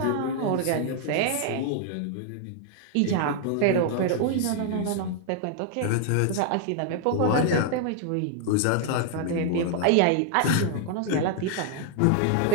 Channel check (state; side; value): different; both; correlation 0.00